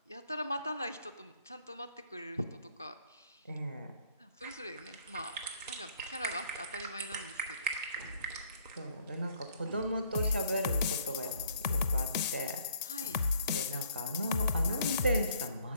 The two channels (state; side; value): inverted; both; correlation -0.62